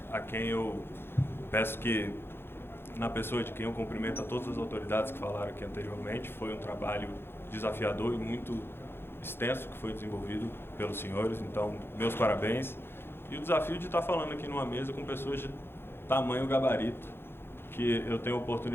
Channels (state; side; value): late; right; 0.11 ms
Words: a quem eu peço que, na pessoa de quem eu cumprimento a todas as autoridades que falaram aqui anteriormente, foi um trabalho desafiador e muito extenso que foi desenvolvido pelos senhores, então meus parabéns. E o desafio de estar falando aqui numa mesa com pessoas de tamanho gabarito, que eu tenho a